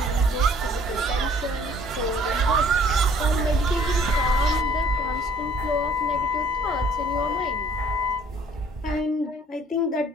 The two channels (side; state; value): both; normal; correlation 0.56